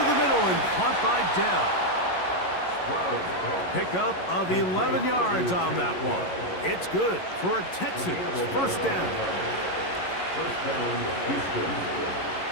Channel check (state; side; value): late; right; 11 ms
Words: the middle and caught by Dell. Pickup of 11 yards on that one. It's good for a Texans 1st down.